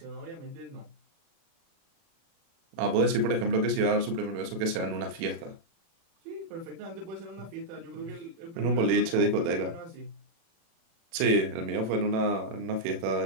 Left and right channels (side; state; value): left; late; 36 ms